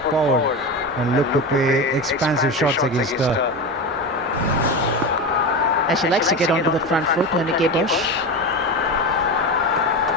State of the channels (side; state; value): both; normal; correlation 0.22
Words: forward and look to play expansive shots against her. And she likes to get onto the front foot, Monica Bush.